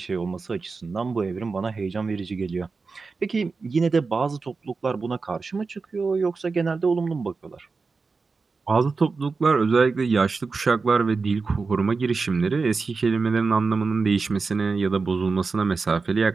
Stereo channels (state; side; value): quieter; left; 4.4 dB